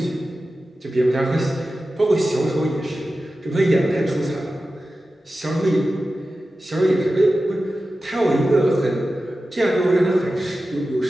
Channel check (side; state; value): both; normal; correlation 0.94